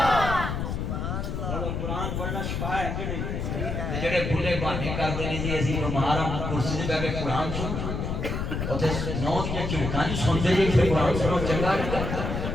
قرآن پڑھنا شفا ہے کہ نہیں جڑے بھولے بہانے کرتے ہیں جی اسی بیمار ہم کرسی تے بیٹھ کے قرآن سن اوتے نو دیاں چڑکاں نہیں سنتے جی پھر قرآن سنو چنگا نہیں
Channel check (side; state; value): left; noise; rumble, 3 dB below the sound